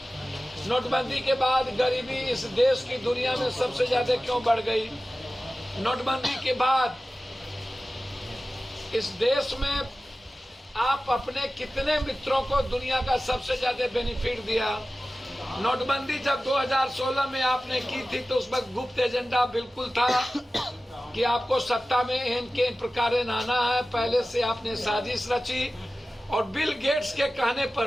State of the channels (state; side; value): normal; both; correlation 0.95